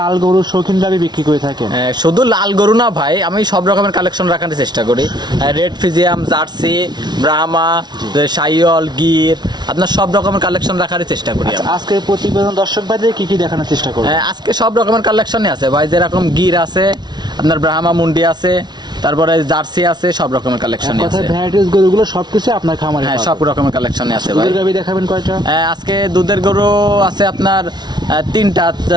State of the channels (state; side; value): late; left; 0.20 ms